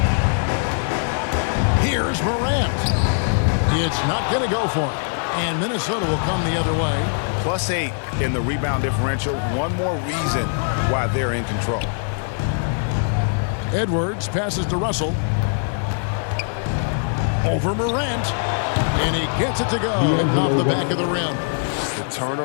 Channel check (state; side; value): silent; right; digital silence